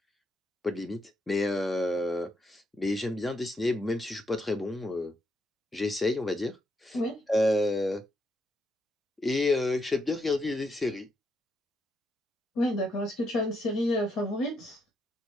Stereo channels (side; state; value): both; normal; correlation 0.79